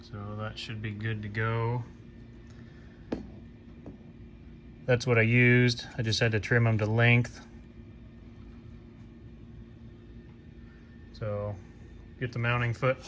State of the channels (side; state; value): both; identical; correlation 1.00